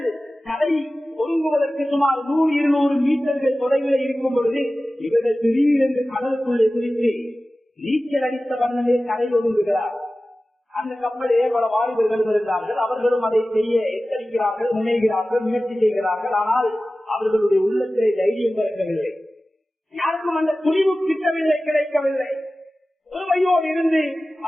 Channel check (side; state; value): both; normal; correlation 0.96